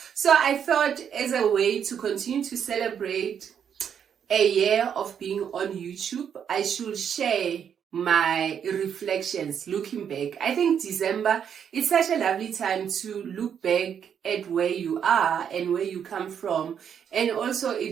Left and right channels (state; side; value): quieter; left; 8.1 dB